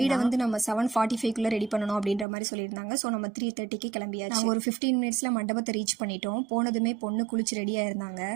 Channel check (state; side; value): drops out; left; at 2.2 s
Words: வந்து நம்ம 7:45க்குள்ளே ரெடி பண்ணணும் அப்படின்ற மாதிரி சொல்லியிருந்தாங்க. ஸோ நம்ம 3:30க்கு கிளம்பியாச்சு. ஒரு 15 மினிட்ஸில் மண்டபத்தை ரீச் பண்ணிட்டோம். போனதுமே பொண்ணு குளிச்சு ரெடியாக இருந்தாங்க.